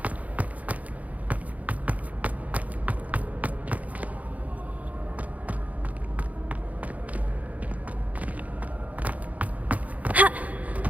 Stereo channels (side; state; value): left; late; 0.072 ms